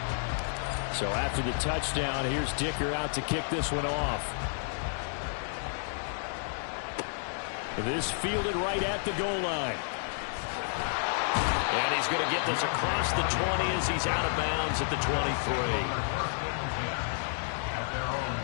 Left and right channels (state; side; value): silent; right; digital silence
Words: So after the touchdown, here's Dicker out to kick this one off. This fielded right at the goal line. And he's going to get this across the 20 as he's out of bounds at the 23.